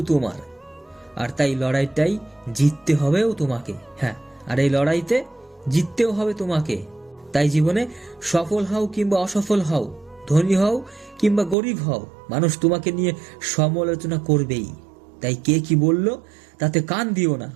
তোমার, আর তাই লড়াইটাই জিততে হবেও তোমাকে। হ্যাঁ, আর এই লড়াইতে জিততেও হবে তোমাকে। তাই জীবনে সফল হও কিংবা অসফল হও, ধনী হও কিংবা গরিব হও, মানুষ তোমাকে নিয়ে সমালোচনা করবেই। তাই কে কি বলল তাতে কান দিও না।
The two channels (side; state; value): left; drops out; at 11.6 s